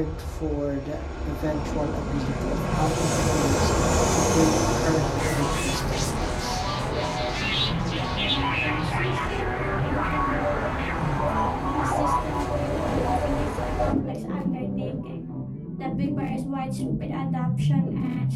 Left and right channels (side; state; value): both; identical; correlation 1.00